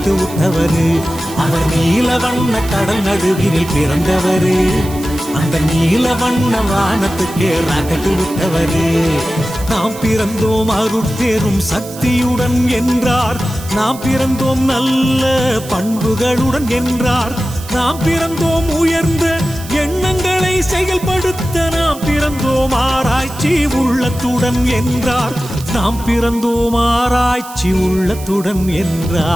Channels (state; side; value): noise; right; hiss, 16 dB below the sound